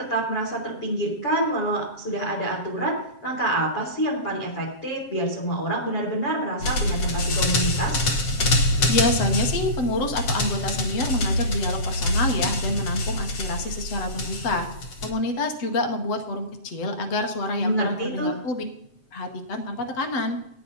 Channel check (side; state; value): right; late; 7.8 ms